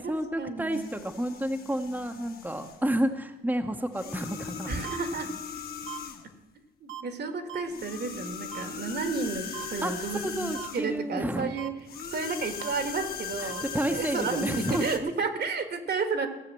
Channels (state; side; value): normal; both; correlation 0.54